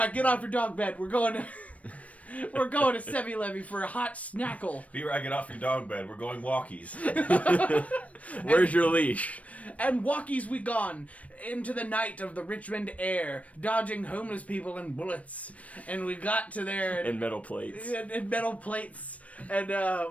get off your dog bed. We're going to 7-Eleven for a hot snackle. B-Rock, get off your dog bed. We're going walkies. Where's your leash? And walkies we gone into the night of the Richmond air, dodging homeless people and bullets. And we got to there And metal plates. and metal plates. And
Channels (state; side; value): late; right; 0.066 ms